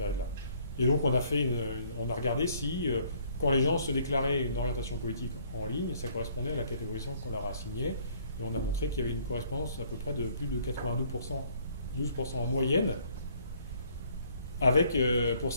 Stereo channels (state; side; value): inverted; both; correlation -0.62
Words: Et donc, on a regardé si, quand les gens se déclaraient une orientation politique en ligne, ça correspondait à la catégorisation qu'on leur a assignée. Et on a montré qu'il y avait une correspondance à peu près de plus de 92%, 12% en moyenne, avec, pour